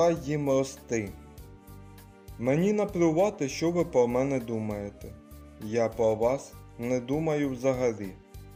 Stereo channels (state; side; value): identical; both; correlation 1.00